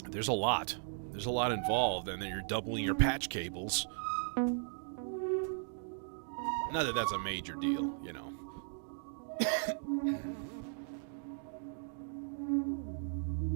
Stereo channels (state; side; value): silent; left; digital silence